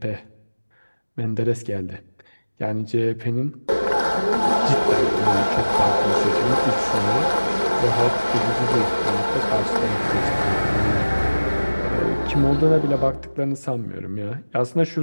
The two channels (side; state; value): both; inverted; correlation -1.00